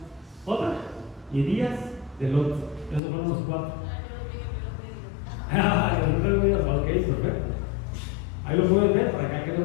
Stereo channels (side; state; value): right; drops out; at 3.0 s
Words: otra. Y días de Lot. Esos fueron los 4. Ok, perfecto. Ahí lo pueden ver para acá que lo